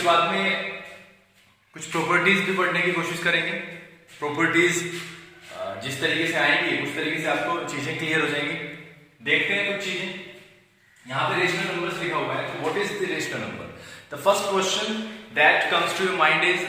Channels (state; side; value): identical; both; correlation 1.00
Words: बाद में कुछ प्रॉपर्टीज भी पढ़ने की कोशिश करेंगे। प्रॉपर्टीज जिस तरीके से आएंगी उस तरीके से आपको चीज़ें क्लियर हो जाएंगी। देखते हैं कुछ चीज़ें। यहाँ पे रेशनल नंबर्स लिखा हुआ है, तो what is the rational number? The first question that comes to your mind is